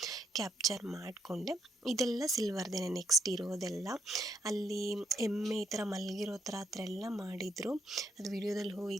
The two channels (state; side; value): normal; both; correlation 0.75